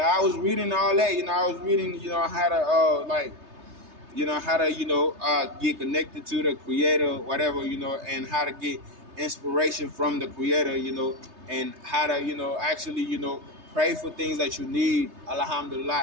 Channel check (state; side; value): late; left; 3.3 ms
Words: was reading all that, I was reading, how to how to, get connected to the creator, whatever, and how to get inspiration from the creator, and how to, actually, pray for things that you need.